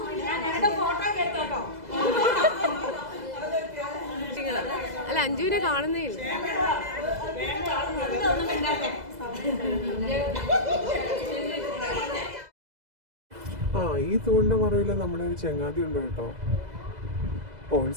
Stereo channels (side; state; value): left; late; 2.0 ms